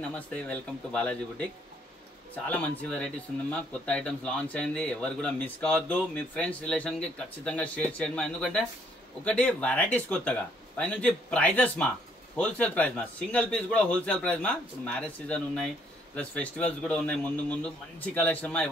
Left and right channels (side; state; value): both; normal; correlation 0.67